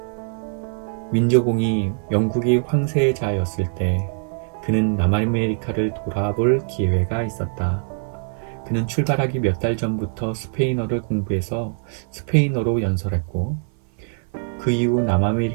윈저공이 영국이 황세자였을 때 그는 남아메리카를 돌아볼 기회가 있었다. 그는 출발하기 몇 달 전부터 스페인어를 공부해서 스페인어로 연설했고 그 이후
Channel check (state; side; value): silent; left; 57 dB below the other